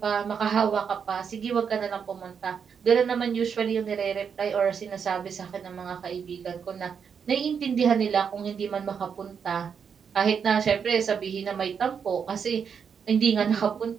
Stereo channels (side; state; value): left; quieter; 6.8 dB